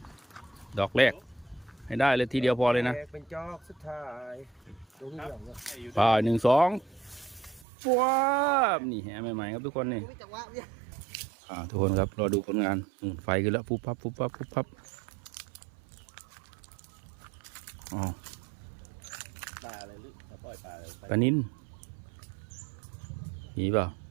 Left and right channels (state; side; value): drops out; left; at 7.7 s